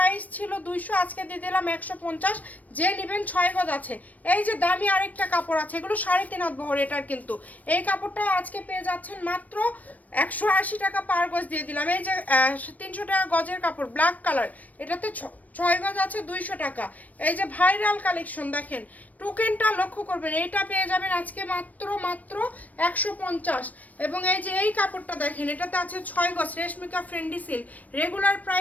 ছিল 200, আজকে দিয়ে দিলাম 150। যে নেবেন 6 গজ আছে। এই যে দামি আরেকটা কাপড় আছে, এগুলো 3.5 হাত বহর। এটার কিন্তু এই কাপড়টা আজকে পেয়ে যাচ্ছেন মাত্র 180 টাকা পার গজ দিয়ে দিলাম। এই যে 300 টাকা গজের কাপড়, ব্ল্যাক কালার, এটাতে 6 গজ আছে 200 টাকা। এই যে ভাইরাল কালেকশন দেখেন, টোকেনটা লক্ষ্য করবেন, এইটা পেয়ে যাবেন আজকে মাত্র 150। এবং এই যে এই কাপড়টা দেখেন, এটাতে আছে 6 গজ রেশমিকা ফ্রেন্ডি সিল্ক, রেগুলার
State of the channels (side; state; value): right; late; 0.074 ms